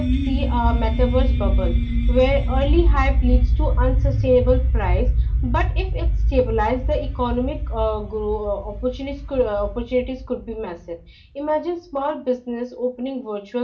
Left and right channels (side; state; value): both; identical; correlation 1.00